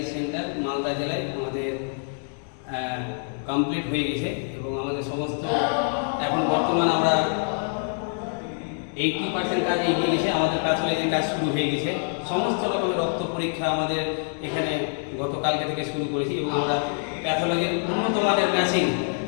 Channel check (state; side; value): silent; right; 61 dB below the other